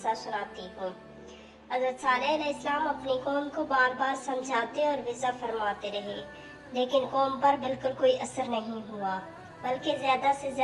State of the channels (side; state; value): both; identical; correlation 1.00